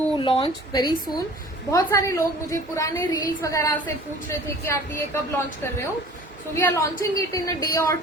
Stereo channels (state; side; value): normal; both; correlation 0.46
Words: launch very soon, बहुत सारे लोग मुझे पुराने रील्स वगैरह से पूछ रहे थे कि आप ये कब लॉन्च कर रहे हो. So we are launching it in a day और